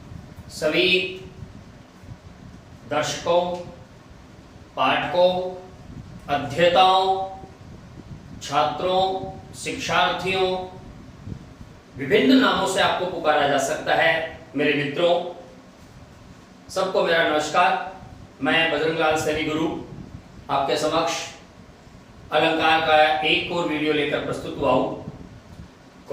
सभी दर्शकों, पाठकों, अध्येताओं, छात्रों, शिक्षार्थियों, विभिन्न नामों से आपको पुकारा जा सकता है। मेरे मित्रों, सबको मेरा नमस्कार। मैं बजरंगलाल सैनी गुरु आपके समक्ष अलंकार का एक और वीडियो लेकर प्रस्तुत हुआ हूं।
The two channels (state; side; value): identical; both; correlation 1.00